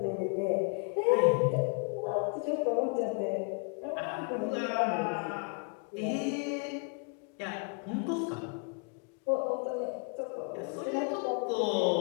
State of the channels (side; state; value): right; quieter; 35.5 dB